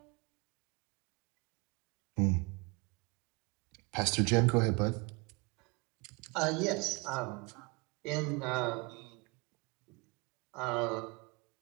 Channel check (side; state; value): left; quieter; 28.5 dB